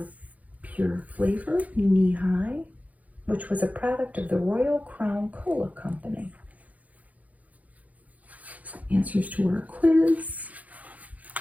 Pure Flavor, Knee High, which was a product of the Royal Crown Cola Company. Answers to our quiz.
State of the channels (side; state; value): left; late; 0.074 ms